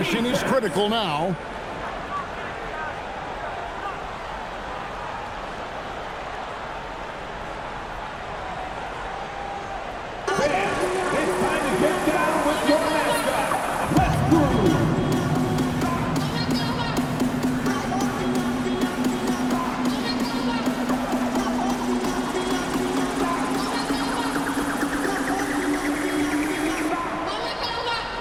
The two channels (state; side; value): identical; both; correlation 1.00